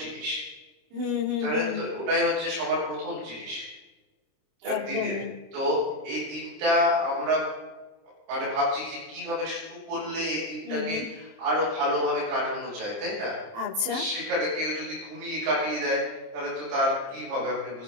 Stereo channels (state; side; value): late; left; 30 ms